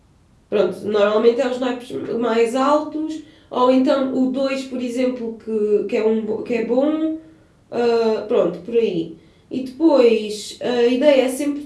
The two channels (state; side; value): identical; both; correlation 1.00